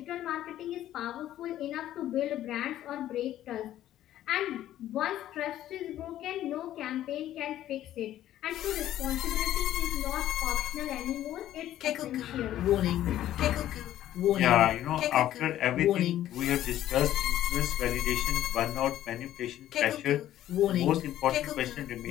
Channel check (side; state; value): right; quieter; 12.7 dB